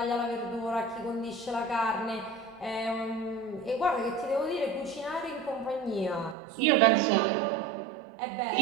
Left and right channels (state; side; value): drops out; left; at 6.4 s